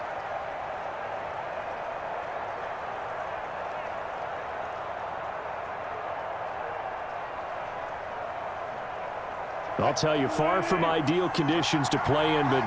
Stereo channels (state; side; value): identical; both; correlation 1.00